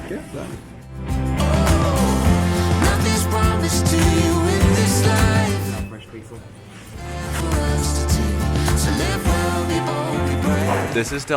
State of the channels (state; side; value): identical; both; correlation 1.00